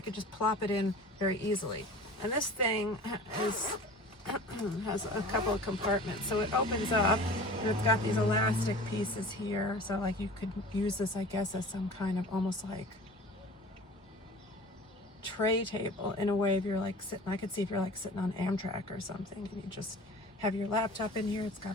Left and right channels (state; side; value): normal; both; correlation 0.41